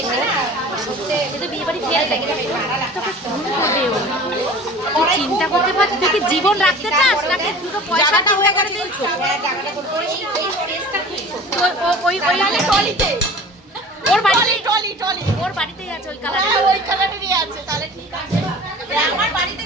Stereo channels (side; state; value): both; normal; correlation 0.41